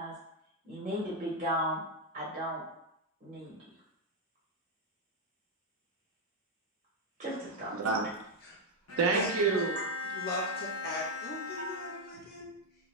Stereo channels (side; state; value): both; normal; correlation 0.02